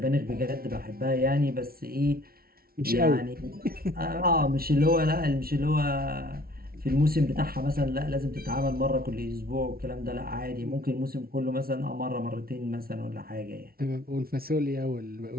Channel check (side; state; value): left; late; 0.44 ms